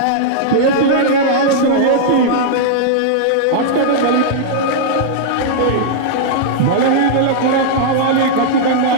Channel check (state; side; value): different; both; correlation -0.02